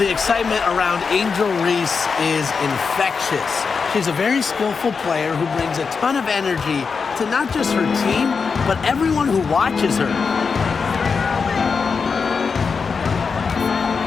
excitement around Angel Reese is infectious. She's a very skillful player who brings a ton of energy to not just her team, but everyone who watches her.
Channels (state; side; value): quieter; right; 5.3 dB